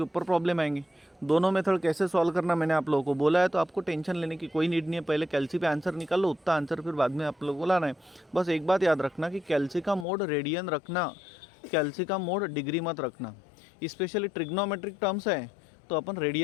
ऊपर प्रॉब्लम आएंगी। दोनों मेथड कैसे सॉल्व करना मैंने आप लोगों को बोला है, तो आपको टेंशन लेने की कोई नीड नहीं है। पहले कैल्सी पे आंसर निकाल लो, उतना आंसर फिर बाद में आप लोगों को लाना है। बस एक बात याद रखना कि कैल्सी का मोड रेडियन रखना, कैल्सी का मोड डिग्री मत रखना। स्पेशली ट्रिग्नोमेट्रिक टर्म्स है तो अपन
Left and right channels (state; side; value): drops out; right; at 10.1 s